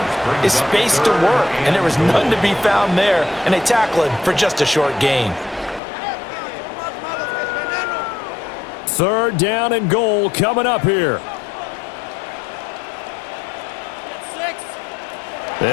is space to work. And there was none to be found there. And they tackle it for just a short gain. 3rd down and goal coming up here.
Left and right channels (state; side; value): drops out; right; at 5.8 s